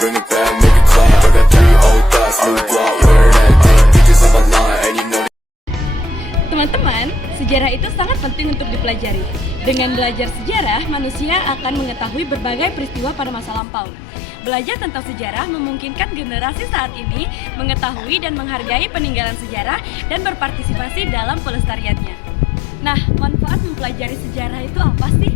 it back, make it clap. I got 3 old thoughts, new block, where that thing. Pictures on my line, and you know. Teman-teman, sejarah itu sangat penting untuk dipelajari. Dengan belajar sejarah, manusia akan mengetahui berbagai peristiwa pada masa lampau. Belajar tentang sejarah memungkinkan generasi saat ini mengetahui dan menghargai peninggalan sejarah dan berpartisipasi dalam pelestariannya. Nah, manfaat mempelajari sejarah itu apa sih?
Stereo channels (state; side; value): drops out; right; at 13.6 s